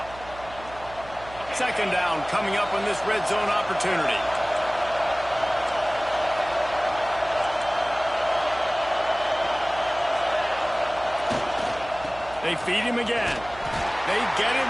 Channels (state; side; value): noise; right; hum, 18 dB below the sound